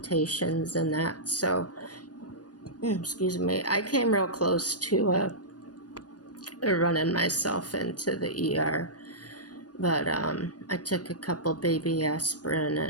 and that. So, excuse me, I came real close to running myself into the ER. But I took a couple baby aspirin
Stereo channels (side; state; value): right; late; 0.69 ms